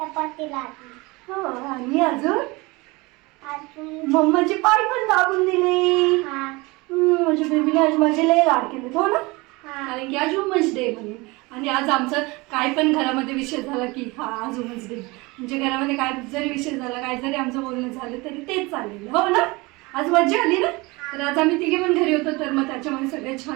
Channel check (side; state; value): left; quieter; 24.2 dB